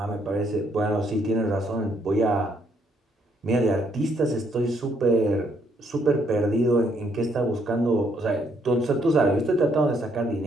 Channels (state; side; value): normal; both; correlation 0.71